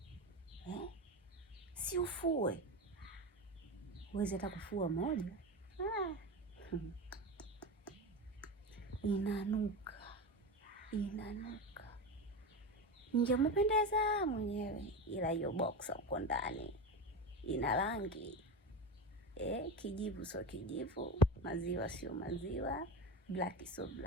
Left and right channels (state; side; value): normal; both; correlation 0.21